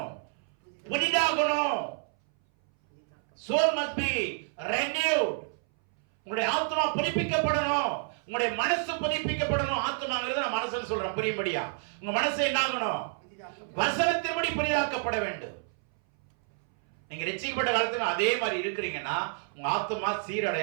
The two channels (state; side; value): silent; left; 58 dB below the other